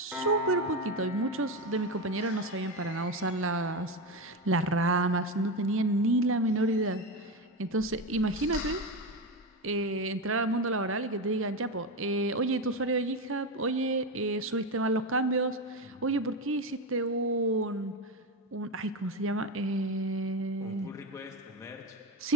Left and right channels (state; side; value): normal; both; correlation 0.15